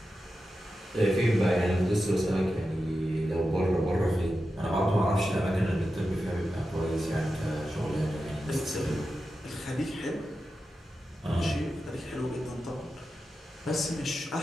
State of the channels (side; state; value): both; normal; correlation 0.91